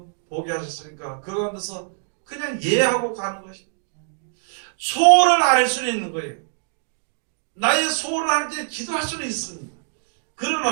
보게 하셨으니까 그 가운데서 그냥 예하고 가는 것입니다. 소원을 알 수는 있는 거예요. 나의 소원을 하나님께 기도할 수는 있습니다.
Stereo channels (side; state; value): left; silent; digital silence